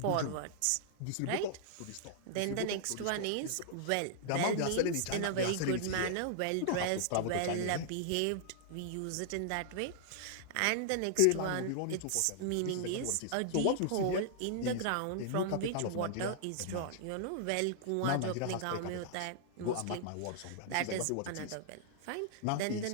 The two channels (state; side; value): different; both; correlation -0.01